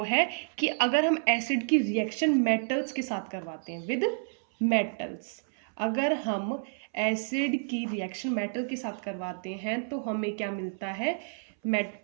है कि अगर हम एसिड की रिएक्शन मेटल्स के साथ करवाते हैं, विद मेटल्स, अगर हम एसिड की रिएक्शन मेटल के साथ करवाते हैं तो हमें क्या मिलता है,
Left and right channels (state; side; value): silent; left; 58 dB below the other